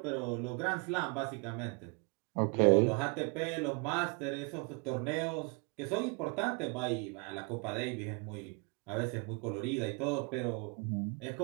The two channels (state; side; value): quieter; left; 33.7 dB